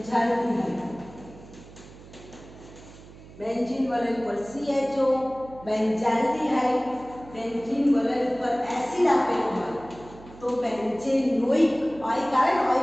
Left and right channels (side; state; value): right; noise; hum, 19 dB below the sound